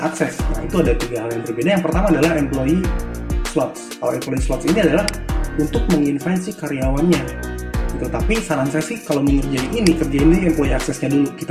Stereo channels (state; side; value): identical; both; correlation 1.00